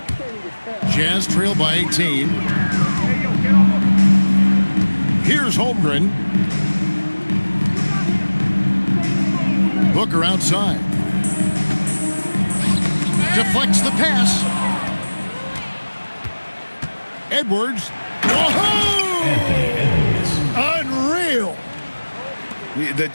Jazz trail by 18. Here's Holmgren. Booker outside. Deflects the pass. Edwards. Unreal. The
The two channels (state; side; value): inverted; both; correlation -1.00